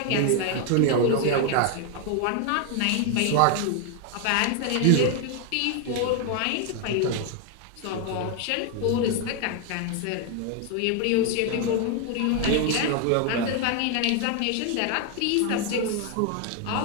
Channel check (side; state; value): both; different; correlation 0.01